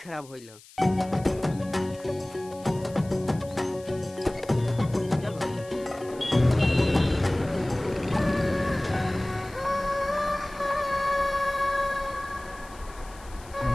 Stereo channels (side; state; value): left; noise; hiss, 22 dB below the sound